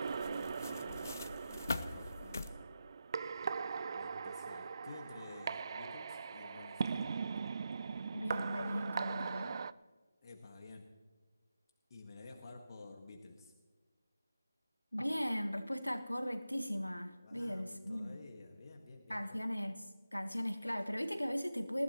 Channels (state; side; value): inverted; both; correlation -0.91